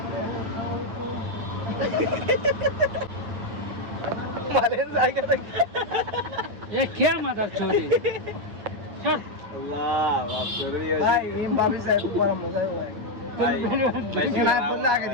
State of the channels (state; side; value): late; left; 9.4 ms